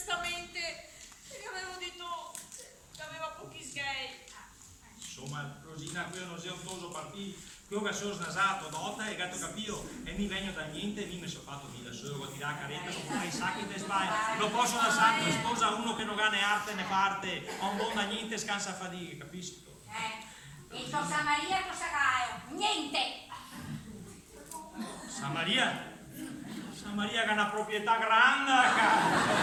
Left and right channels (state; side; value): identical; both; correlation 1.00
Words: gli avevo detto che aveva pochi sgay. Insomma, Rosina, quello non sei un toso partito. Quello che sono snasato, dotta e gatto capito e mi vengo da niente e mi sono fatto via solo con tirare caretta, non fai sacchi te sbagli, non posso lasciare che sposa uno che non ha né arte né parte, non buon da niente scansa fatica, capisci? E il tuo Samaria cosa hai? Niente! Samaria che ha una proprietà grande,